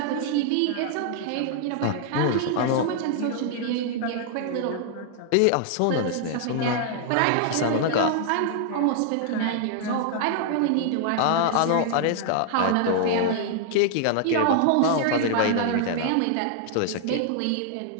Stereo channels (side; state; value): both; different; correlation 0.00